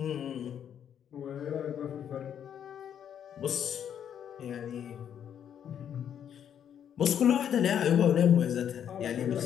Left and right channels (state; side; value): quieter; right; 9.1 dB